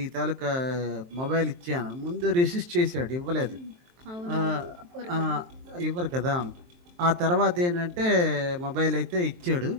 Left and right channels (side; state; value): left; late; 23 ms